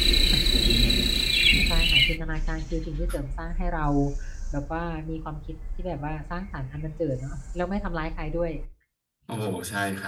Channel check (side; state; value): both; identical; correlation 1.00